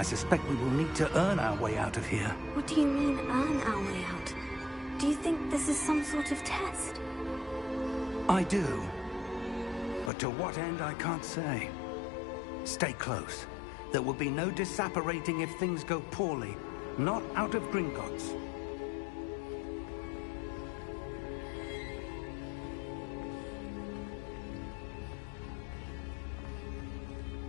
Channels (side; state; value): right; drops out; at 10.1 s